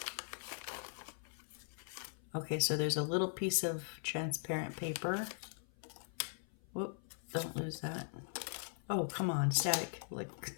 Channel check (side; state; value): right; silent; 51 dB below the other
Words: Okay, so there's a little piece of transparent paper. Whoop, don't lose that. Oh, come on, static. Like,